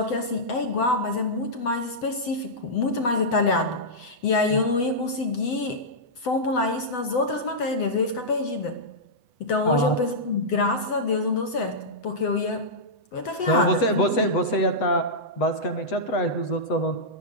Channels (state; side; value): late; right; 7.9 ms